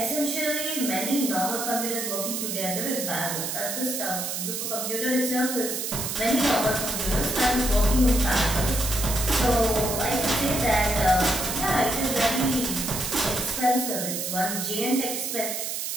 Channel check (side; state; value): right; noise; hiss, 3 dB below the sound